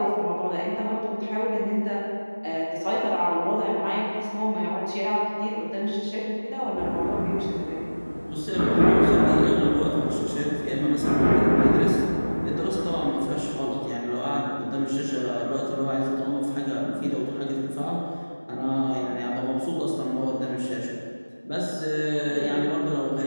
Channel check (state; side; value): inverted; both; correlation -1.00